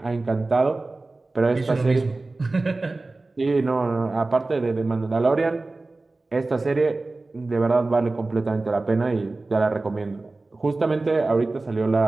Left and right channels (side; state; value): left; quieter; 3.3 dB